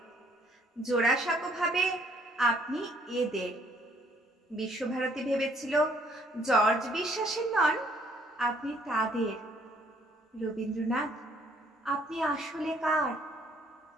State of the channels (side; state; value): both; normal; correlation 0.64